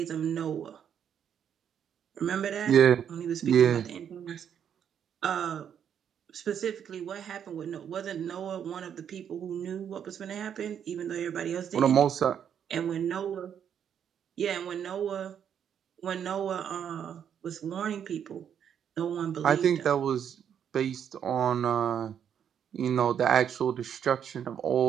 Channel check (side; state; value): left; quieter; 8.6 dB